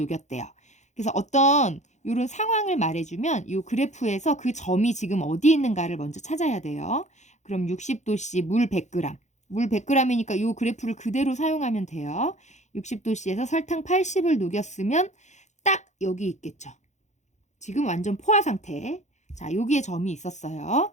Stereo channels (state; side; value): late; right; 0.34 ms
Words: 그래서 어떤 요런 상황을 말해주면 요 그래프에서 그 점이 지금 어디 있는가를 먼저 찾아야 돼요. 그럼 60도씨 물 100g. 물 100g이니까 요 그래프를 그대로 사용하면 돼요. 60도씨에서 설탕 80을 녹였으면 딱 여기 있겠죠. 지금 완전 포화 상태. 자, 여기에 점이 있었어요.